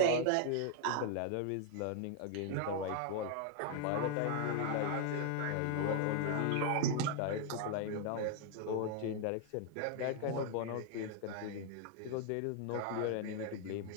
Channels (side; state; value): both; different; correlation 0.00